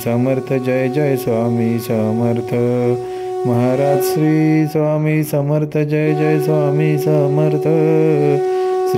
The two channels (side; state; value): both; identical; correlation 1.00